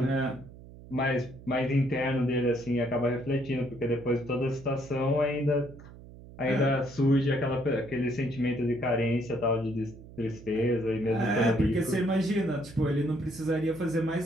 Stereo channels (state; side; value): noise; right; hum, 18 dB below the sound